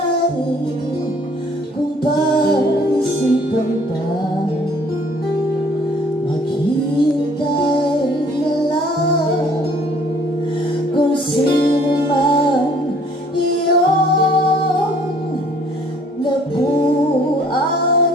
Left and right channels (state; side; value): normal; both; correlation 0.57